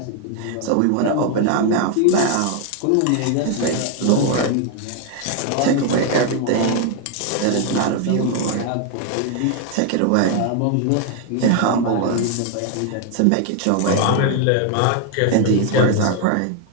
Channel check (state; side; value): different; both; correlation 0.01